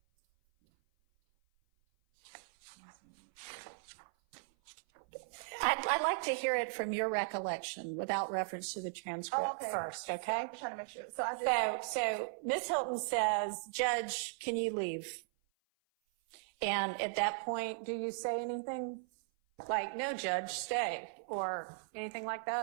I'd like to hear it from your recollection without reference to the transcript first, okay? I'm trying to make sure. So Ms. Hilton says, Judge, can you leave? And at that point, do you say anything? Like, no, Judge, stay, or anything like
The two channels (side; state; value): left; silent; 53 dB below the other